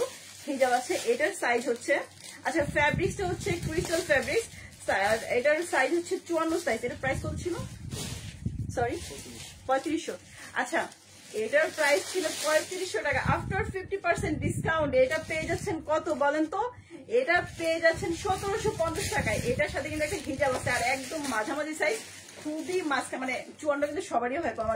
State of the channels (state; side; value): identical; both; correlation 1.00